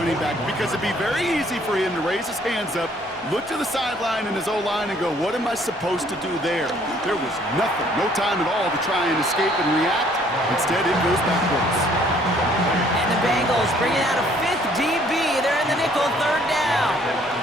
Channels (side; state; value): both; normal; correlation 0.61